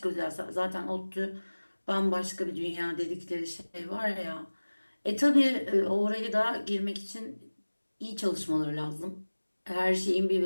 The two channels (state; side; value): inverted; both; correlation -1.00